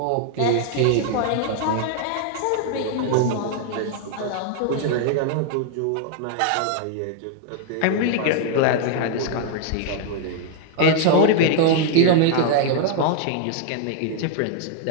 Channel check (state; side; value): different; both; correlation 0.00